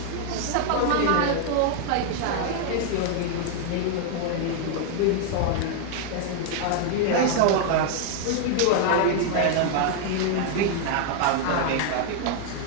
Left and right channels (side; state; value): both; different; correlation 0.00